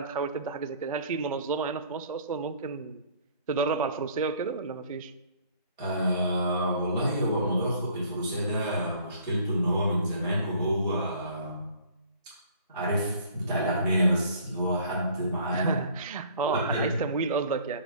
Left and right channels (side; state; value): both; inverted; correlation -0.54